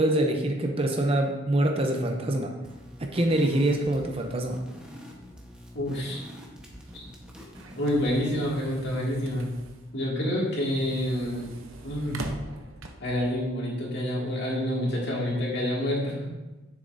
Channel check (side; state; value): both; normal; correlation 0.64